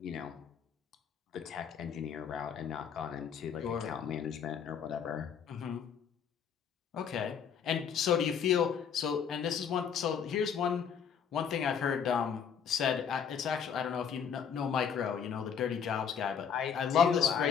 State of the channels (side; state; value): right; quieter; 7.5 dB